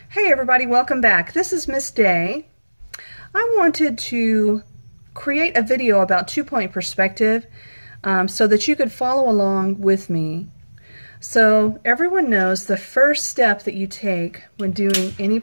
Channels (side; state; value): both; inverted; correlation -1.00